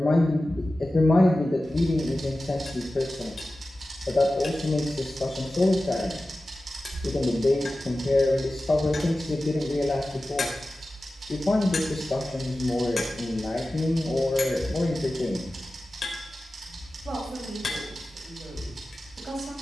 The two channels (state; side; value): normal; both; correlation 0.95